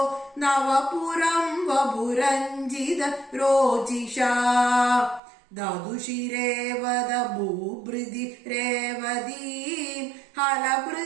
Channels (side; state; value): left; drops out; at 5.2 s